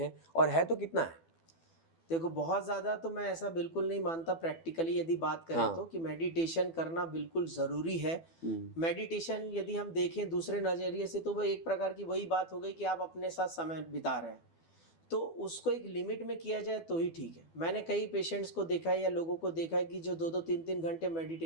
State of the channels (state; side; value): late; right; 12 ms